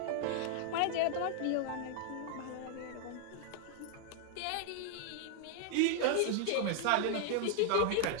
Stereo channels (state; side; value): different; both; correlation 0.00